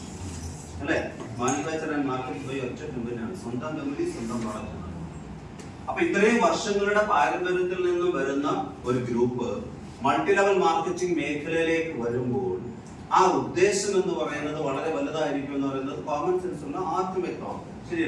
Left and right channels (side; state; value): both; identical; correlation 1.00